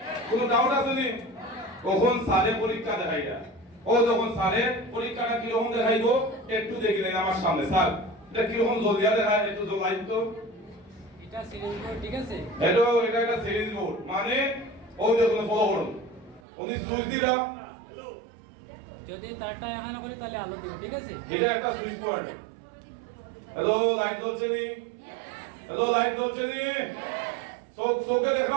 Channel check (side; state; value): left; drops out; at 16.4 s